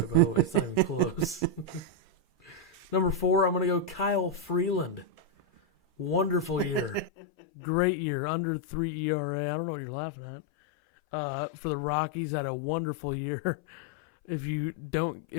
by the way. It's not even close. Number 4, I'm going to go Kyle Freeland. Wonderful year. Great year. Under 3 ERA. I don't know what you're laughing at. For the Rockies, had a wonderful year. If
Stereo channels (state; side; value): drops out; right; at 7.1 s